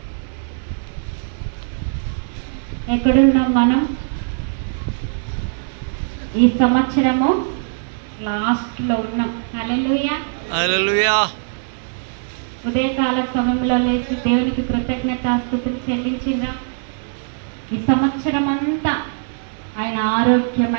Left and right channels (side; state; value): left; silent; 65 dB below the other